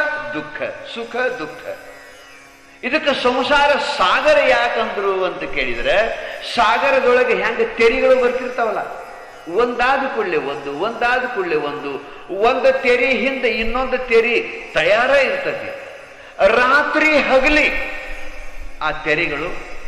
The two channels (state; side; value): identical; both; correlation 1.00